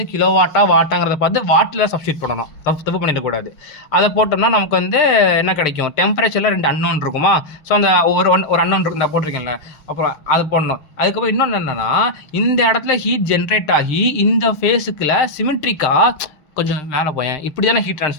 வாட்டாங்கிறத பார்த்து வாட்டில் சப்ஸ்டியூட் பண்ணணும், தப்பு பண்ணிடக்கூடாது. அதை போட்டோம்னா நமக்கு வந்து என்ன கிடைக்கும், டெம்பரேச்சரில் 2 அன்னோன் இருக்குமா. ஸோ அந்த ஒரு அன்னோன் இருக்கு, நான் போட்டிருக்கேன்ல, அப்புறம் அது போடணும். அதுக்கப்புறம் இன்னொன்று என்னென்னா இந்த இடத்துல ஹீட் ஜென்ரேட் ஆகி இந்த ஃபேஸுக்குள்ள சிமெட்ரிக்காக கொஞ்சம் மேலே போயேன், இப்படி தானே ஹீட்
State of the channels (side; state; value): right; late; 6.6 ms